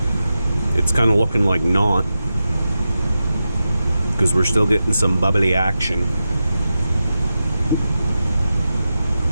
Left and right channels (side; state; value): both; inverted; correlation -0.91